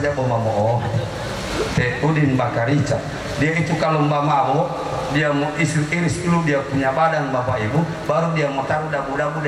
Bomamoo. Udin Bakarica. Dia itu kalau mabuk, dia mau iris dulu dia punya badan Bapak Ibu, baru dia mau taruh dabu-dabu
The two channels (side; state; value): both; identical; correlation 1.00